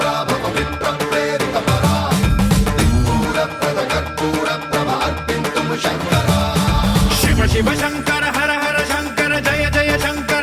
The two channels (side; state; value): both; identical; correlation 1.00